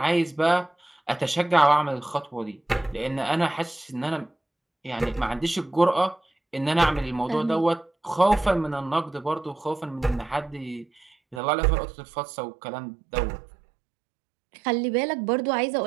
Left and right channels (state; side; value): drops out; left; at 11.4 s